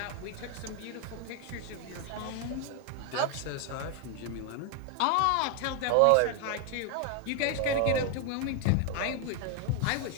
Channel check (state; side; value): different; both; correlation 0.01